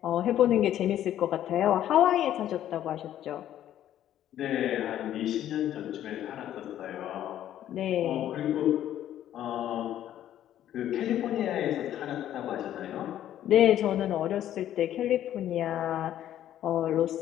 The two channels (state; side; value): quieter; right; 11.7 dB